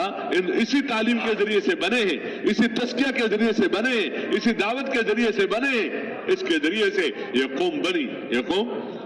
اسی تعلیم کے ذریعے سے بنے ہیں، اسی تزکیہ کے ذریعے سے بنے ہیں، اسی دعوت کے ذریعے سے بنے ہیں، اس کے ذریعے سے یہ قوم بنی، یہ قوم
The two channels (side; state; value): both; identical; correlation 1.00